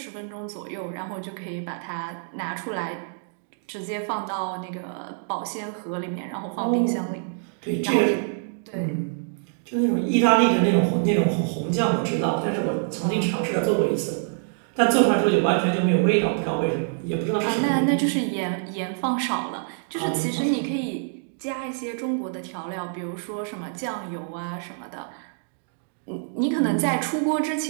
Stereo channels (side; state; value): left; silent; digital silence